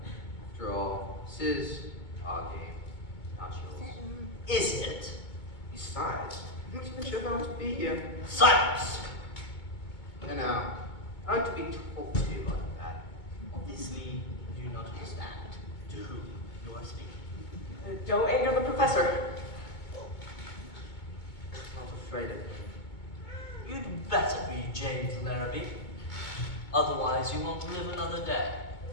After all, this is our game, not yours. Is it? Besides, I'm not even sure if I want to be here. Silence! And I like to be talked to like that. Obviously, you do not understand to whom you are speaking. Don't anger the professor. I'm not afraid of him. You'd better be James Larrabee. Otherwise, you won't live another day.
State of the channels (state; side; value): late; right; 2.2 ms